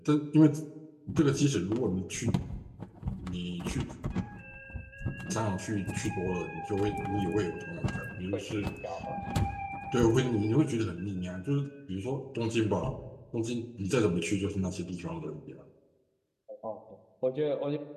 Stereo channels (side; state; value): both; identical; correlation 1.00